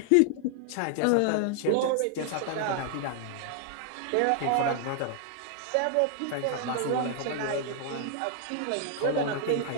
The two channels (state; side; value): different; both; correlation 0.00